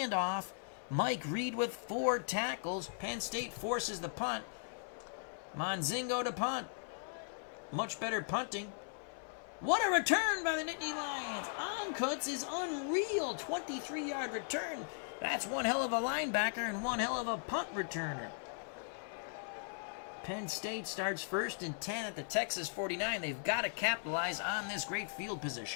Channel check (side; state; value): right; silent; 52 dB below the other